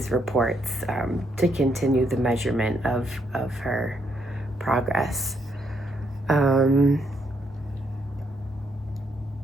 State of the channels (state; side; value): normal; both; correlation 0.75